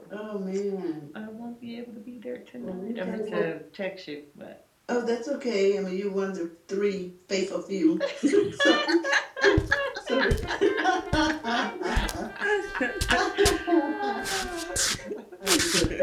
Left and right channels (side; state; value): both; identical; correlation 1.00